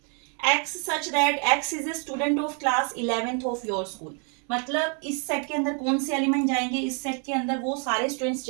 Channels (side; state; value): left; quieter; 39.4 dB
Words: x such that x is a student of class 11th of your school, मतलब इस सेट के अंदर कौन से एलिमेंट जाएंगे, इस सेट के अंदर वो सारे स्टूडेंट्स